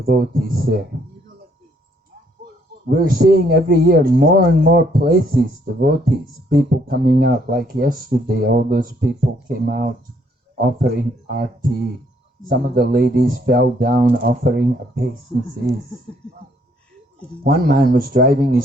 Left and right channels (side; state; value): both; normal; correlation 0.68